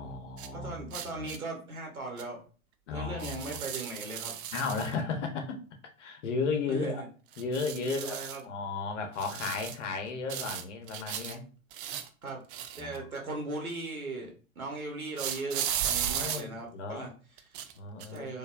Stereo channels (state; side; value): normal; both; correlation 0.21